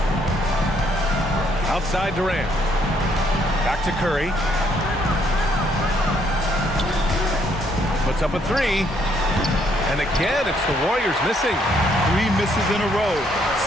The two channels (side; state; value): both; normal; correlation 0.69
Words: Outside Durant. Back to Curry. Puts up a 3. And again, it's the Warriors missing. 3 misses in a row.